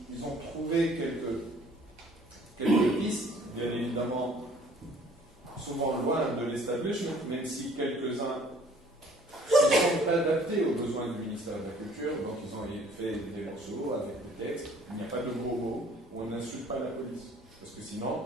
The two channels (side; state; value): both; normal; correlation 0.55